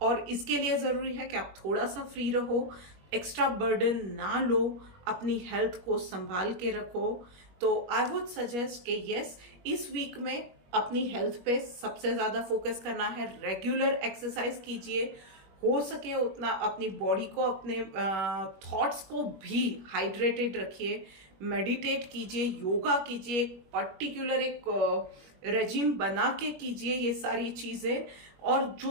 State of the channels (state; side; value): late; left; 21 ms